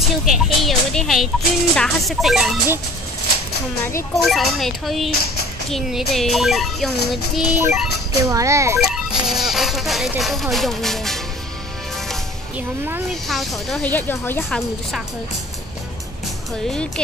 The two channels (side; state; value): both; normal; correlation 0.47